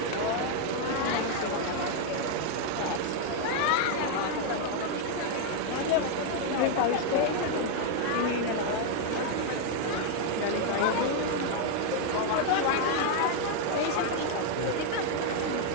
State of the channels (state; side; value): different; both; correlation 0.00